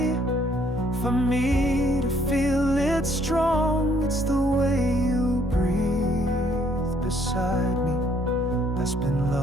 for me to feel it strong. It's the way you breathe beside me that's been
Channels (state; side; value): normal; both; correlation 0.65